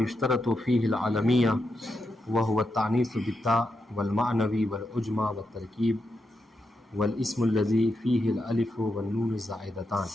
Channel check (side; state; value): both; normal; correlation 0.85